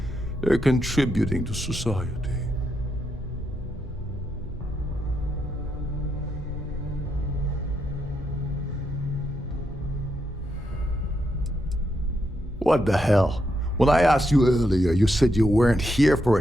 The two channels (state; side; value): normal; both; correlation 0.81